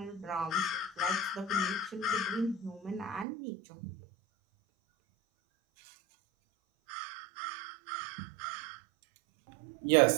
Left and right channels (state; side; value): drops out; left; at 3.2 s